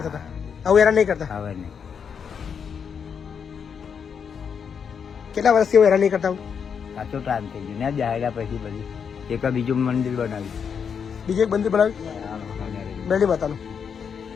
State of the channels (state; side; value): quieter; right; 6.9 dB